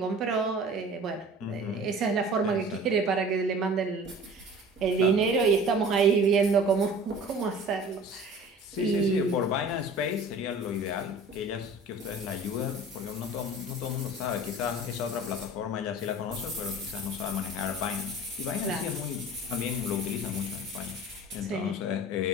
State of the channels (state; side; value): normal; both; correlation 0.43